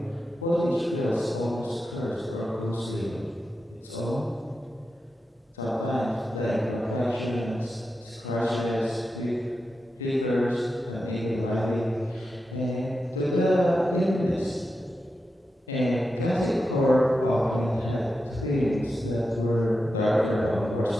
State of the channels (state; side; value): normal; both; correlation 0.89